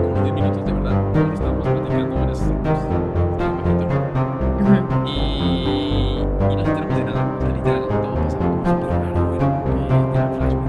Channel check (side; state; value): both; identical; correlation 1.00